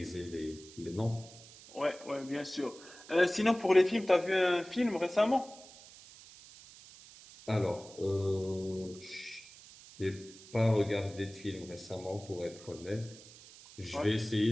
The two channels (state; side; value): noise; right; hiss, 19 dB below the sound